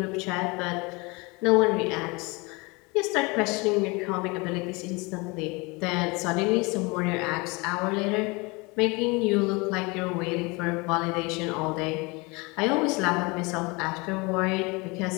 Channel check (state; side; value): quieter; right; 26.7 dB